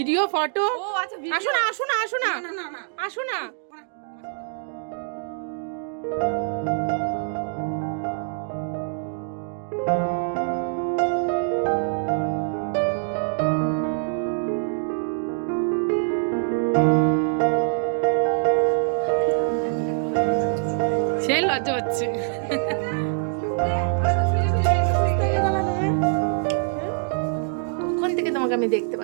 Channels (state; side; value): silent; left; digital silence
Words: ফটো ও আচ্ছা আসো না আসো না আসো না আসো না সে লজ্জা হচ্ছে কোন থেকে তোমাকে আমি দেখতে